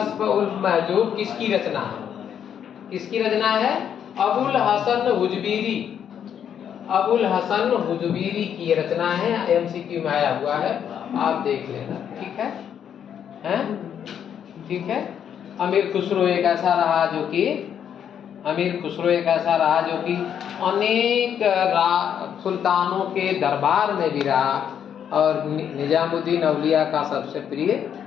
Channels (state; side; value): quieter; right; 8.7 dB